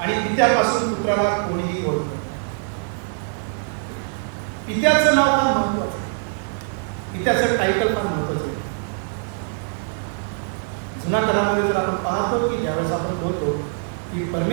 पित्यापासून पुत्राला कोणीही ओळखत. पित्याचं नाव फार महत्वाचं आहे. पित्याचं टायटल फार महत्वाचं आहे. जुन्या करारामध्ये जर आपण पाहतो की ज्यावेळेस आपण बोलतो की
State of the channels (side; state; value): left; silent; digital silence